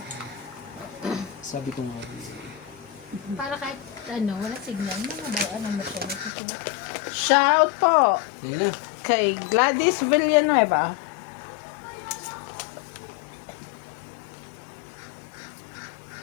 Sabi ko nga. Para kahit ano, wala signal, mga ba, ano mo siya, nasusulat. Shoutout po Kaya na. kay Gladys Villanueva.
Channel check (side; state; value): right; drops out; at 6.3 s